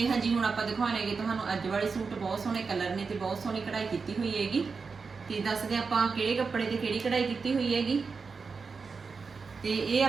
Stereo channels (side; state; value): left; quieter; 4.9 dB